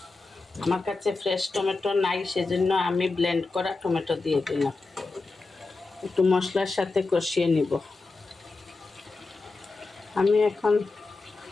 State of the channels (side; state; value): right; quieter; 3.6 dB